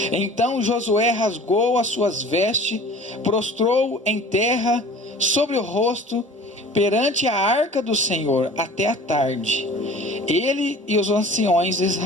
Então Josué rasgou as suas vestes, prostrou em terra sobre o rosto perante a arca do Senhor até a tarde, ele e os anciões de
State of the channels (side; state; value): both; normal; correlation 0.44